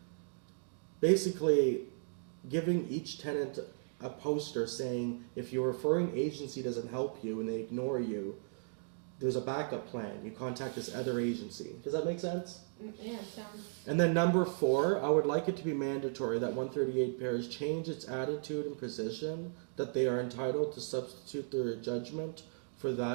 basically giving each tenant a poster saying, if your referring agency doesn't help you and they ignore you, there's a backup plan. You contact this other agency. Does that make sense? Yeah, sounds. And then number four, I would like it to be mandatory that 138 pairs change its attitude and position, that they are entitled to substitute their judgment for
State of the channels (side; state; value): left; silent; digital silence